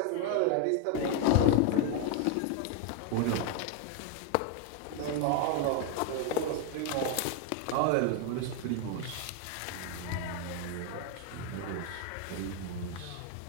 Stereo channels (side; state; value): both; different; correlation 0.01